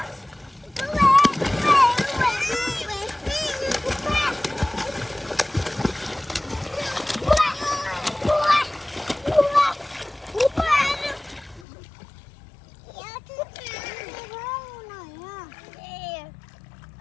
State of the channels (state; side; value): drops out; right; at 11.7 s